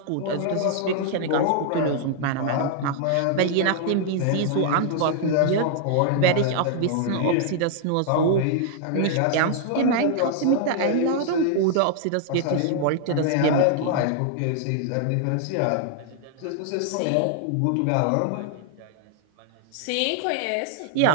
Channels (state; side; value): different; both; correlation -0.01